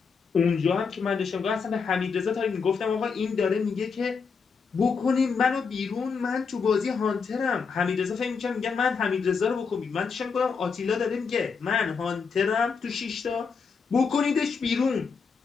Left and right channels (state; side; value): quieter; right; 5.5 dB